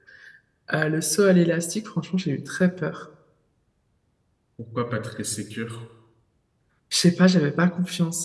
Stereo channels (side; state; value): both; identical; correlation 1.00